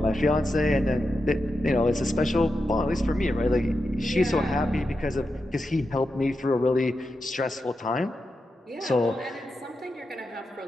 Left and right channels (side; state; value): both; normal; correlation 0.88